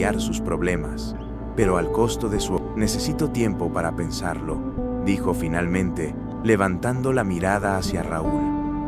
sus problemas, pero al costo de su... Necesito tiempo para pensarlo, dijo finalmente, levantando la mirada hacia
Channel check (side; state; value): both; identical; correlation 1.00